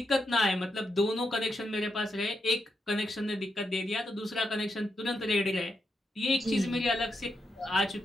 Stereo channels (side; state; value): both; normal; correlation 0.84